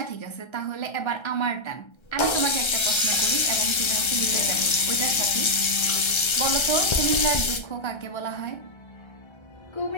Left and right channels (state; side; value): late; right; 1.3 ms